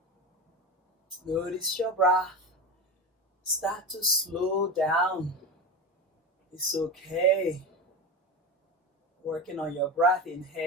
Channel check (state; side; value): normal; both; correlation 0.22